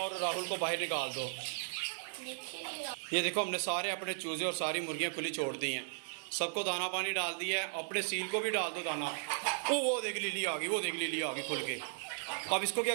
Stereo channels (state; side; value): silent; left; digital silence